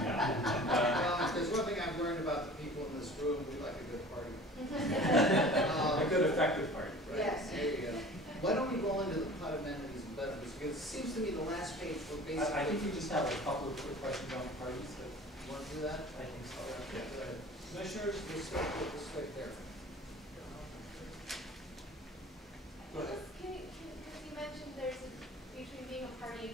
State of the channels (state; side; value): normal; both; correlation 0.43